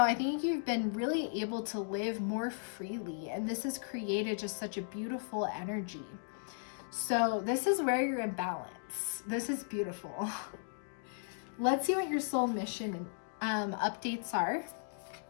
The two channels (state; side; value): silent; right; digital silence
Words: I think you've been really able to live more freely, and this has created just such a beautiful energy. So this is where you're in balance. This is beautiful. Let's see what your soul mission updates are.